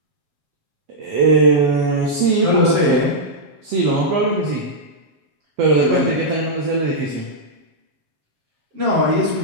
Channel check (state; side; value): late; left; 7.3 ms